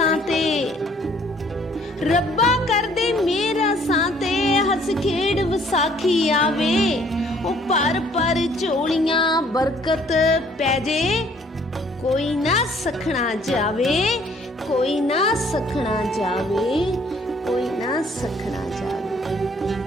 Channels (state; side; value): normal; both; correlation 0.60